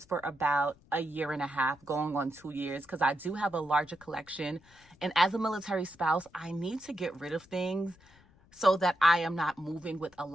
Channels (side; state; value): left; noise; rumble, 28 dB below the sound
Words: for about a year and a half, going on 2 years, because I do have a larger collection. And as a military spouse, I need to get rid of things so that I am not moving with a